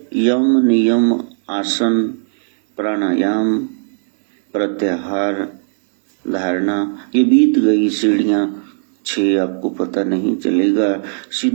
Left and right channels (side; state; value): left; silent; digital silence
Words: यम, नियम, आसन, प्राणायाम, प्रत्याहार, धारणा, ये बीत गई सीढ़ियां 6, आपको पता नहीं चलेगा।